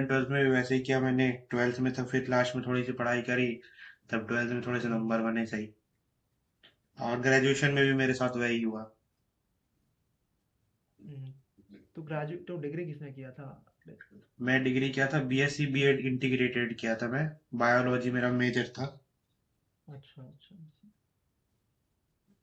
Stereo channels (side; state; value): both; identical; correlation 1.00